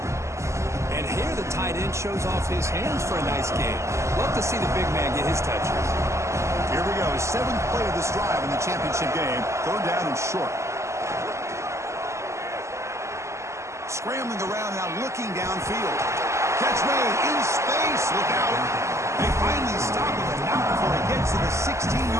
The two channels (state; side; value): late; left; 0.14 ms